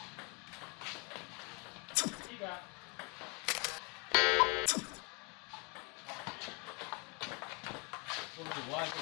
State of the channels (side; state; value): right; quieter; 31.8 dB